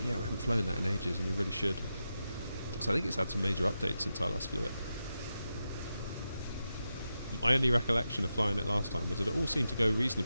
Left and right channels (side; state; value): both; inverted; correlation -0.89